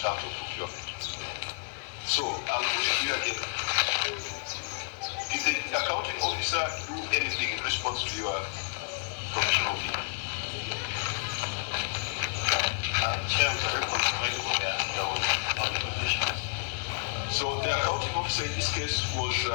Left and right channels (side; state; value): right; silent; digital silence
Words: of procurement. So I'll put it here again. Did the accounting officer do anything in response to your professional opinion? Chair, there was no negotiation. So the accounting officer in this case was